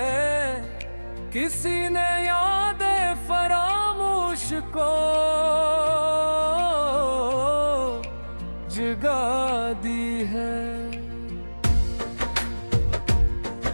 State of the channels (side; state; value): both; inverted; correlation -1.00